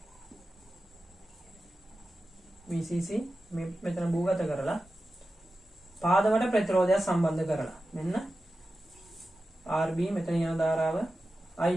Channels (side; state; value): both; normal; correlation 0.93